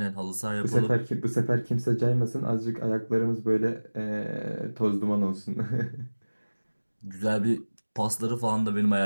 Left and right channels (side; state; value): both; inverted; correlation -1.00